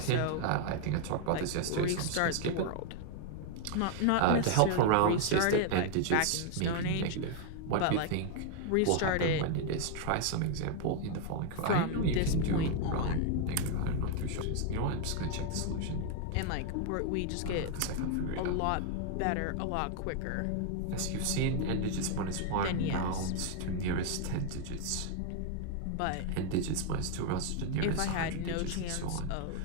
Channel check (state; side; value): different; both; correlation 0.00